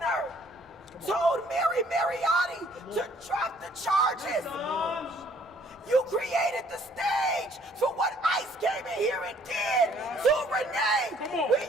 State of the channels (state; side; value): normal; both; correlation 0.61